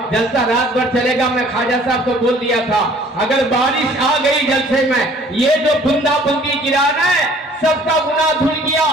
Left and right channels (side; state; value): both; normal; correlation 0.55